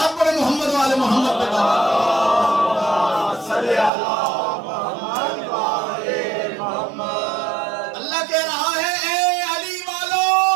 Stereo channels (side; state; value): left; drops out; at 3.9 s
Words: پڑھے محمد والے محمد پہ. اللہ کہہ رہا ہے اے علی والو